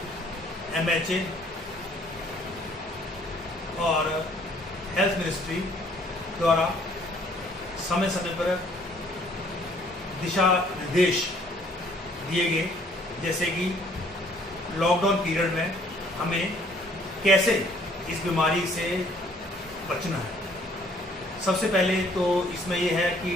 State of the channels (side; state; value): both; normal; correlation 0.60